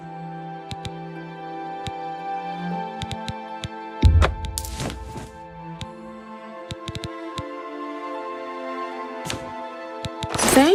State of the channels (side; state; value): both; identical; correlation 1.00